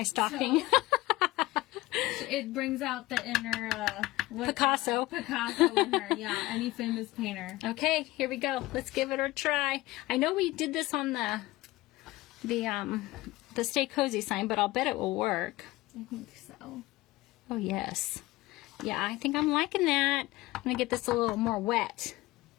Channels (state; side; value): quieter; right; 19.0 dB